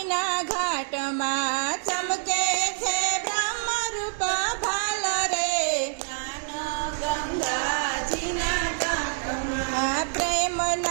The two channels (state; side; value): silent; left; digital silence